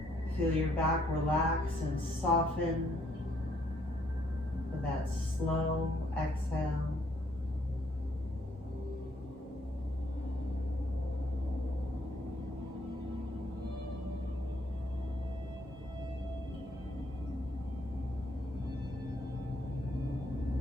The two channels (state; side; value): normal; both; correlation 0.69